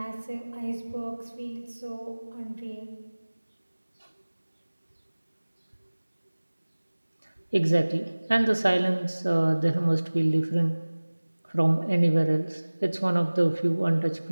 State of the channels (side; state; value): both; inverted; correlation -1.00